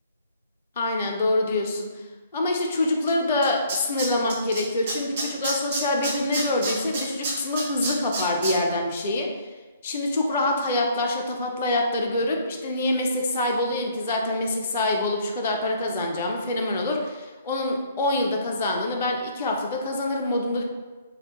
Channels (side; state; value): both; inverted; correlation -0.60